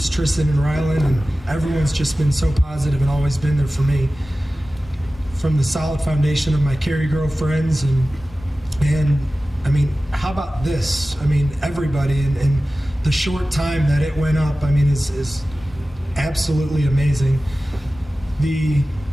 Tristan and Rylan, and everyone's just been so positive and always been there for me. From the solid foundation of my Cary girlfriends, and I mean, how about this? I mean, everybody, and the short time that it went up, I mean, is absolutely amazing. The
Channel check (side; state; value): both; normal; correlation 0.96